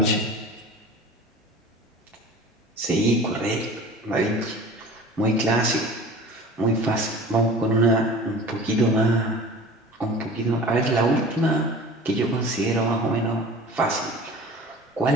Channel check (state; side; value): normal; both; correlation 0.40